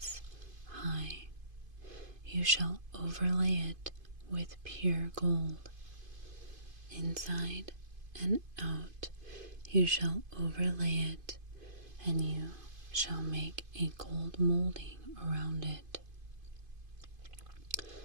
high. You shall overlay it with pure gold. Inside and out you shall overlay it, and you shall make a gold molding around it.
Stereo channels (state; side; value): late; left; 2.5 ms